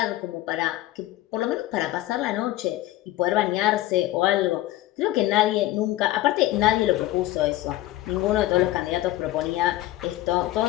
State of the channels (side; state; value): right; quieter; 15.8 dB